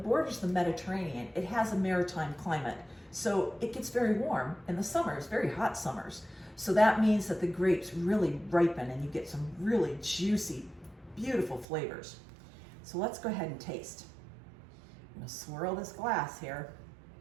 borders the Mediterranean, it has a maritime climate. So it gets very warm in the summers, very hot summers. So that means that the grapes really ripen and you get some really juicy, beautiful flavors. So let's go ahead and taste. I'm gonna swirl this glass here.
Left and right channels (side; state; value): left; drops out; at 11.7 s